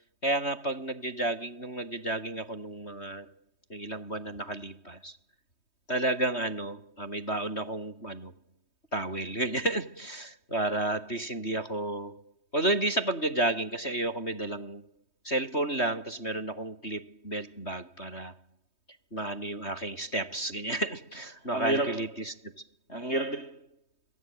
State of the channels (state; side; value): late; right; 3.2 ms